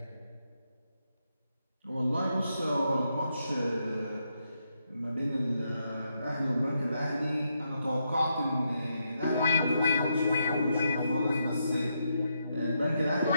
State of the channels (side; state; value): both; inverted; correlation -0.81